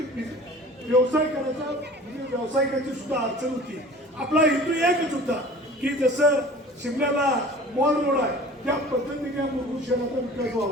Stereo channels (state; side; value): normal; both; correlation 0.43